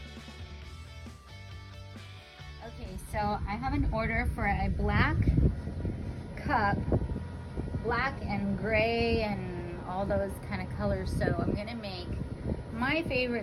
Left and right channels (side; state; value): both; identical; correlation 1.00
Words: Okay, so I have an order for a black cup, black and gray and all those kind of colors. So I'm gonna make my